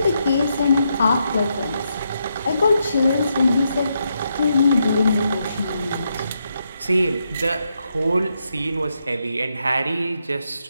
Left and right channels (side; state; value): both; inverted; correlation -0.81